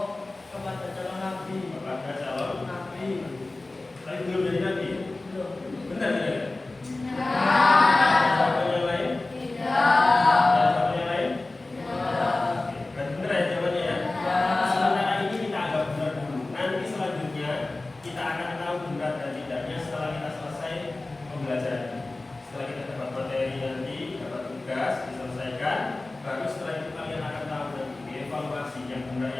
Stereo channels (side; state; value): right; quieter; 3.1 dB